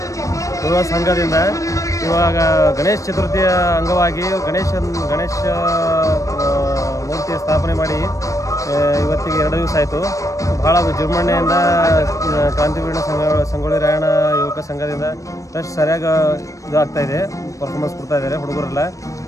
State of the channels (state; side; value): late; right; 0.16 ms